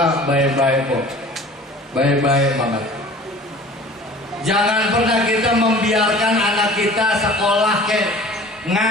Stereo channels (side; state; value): both; normal; correlation 0.45